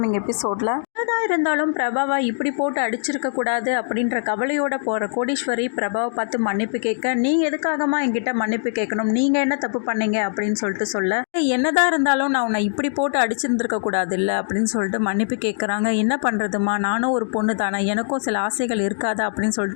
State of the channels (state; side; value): silent; right; digital silence